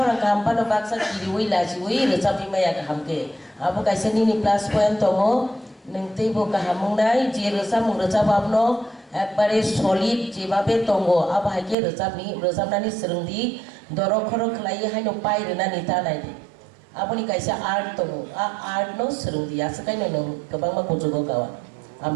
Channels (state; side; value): drops out; left; at 11.8 s